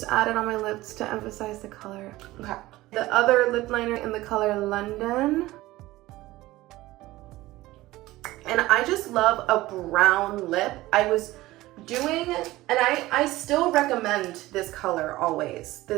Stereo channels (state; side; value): quieter; left; 17.7 dB